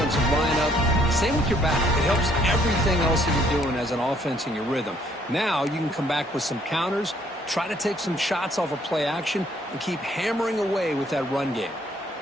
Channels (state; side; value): normal; both; correlation 0.65